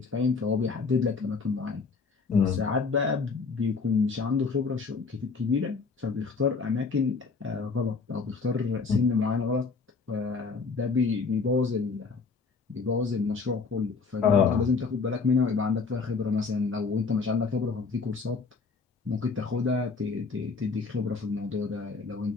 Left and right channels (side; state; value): right; quieter; 4.7 dB